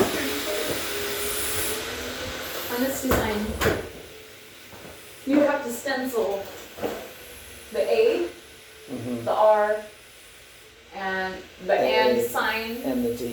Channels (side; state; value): both; identical; correlation 1.00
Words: On this design, you have to stencil the A, the R, and the and sign, And the